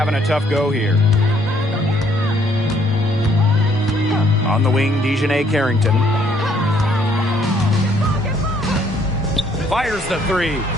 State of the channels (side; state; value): both; normal; correlation 0.66